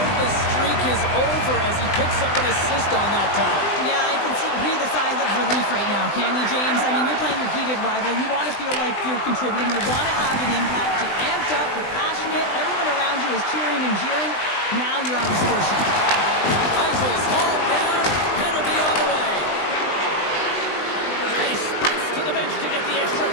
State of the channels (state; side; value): late; right; 20 ms